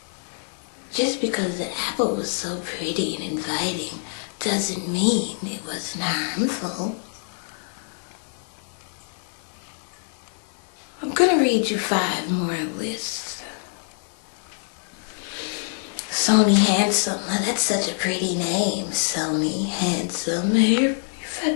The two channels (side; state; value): right; silent; digital silence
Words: Just because the apple was so pretty and inviting doesn't mean it wasn't harmful. I'm gonna read you 5 more lists. Sony Handsome. Now that's such a pretty name. Sony Handsome. Your